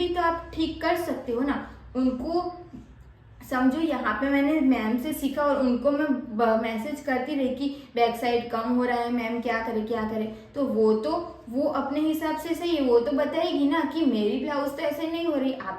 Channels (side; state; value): both; identical; correlation 1.00